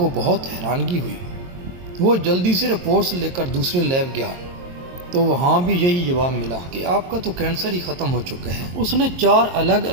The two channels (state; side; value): late; left; 22 ms